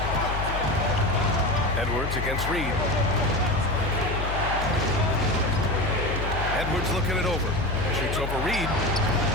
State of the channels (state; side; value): noise; left; hum, 4 dB below the sound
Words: Edwards against Reed. Edwards looking it over. Shoots over Reed.